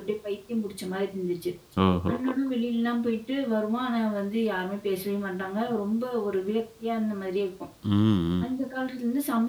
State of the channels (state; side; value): identical; both; correlation 1.00